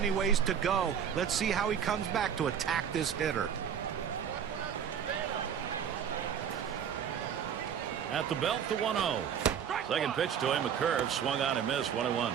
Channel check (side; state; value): left; quieter; 8.2 dB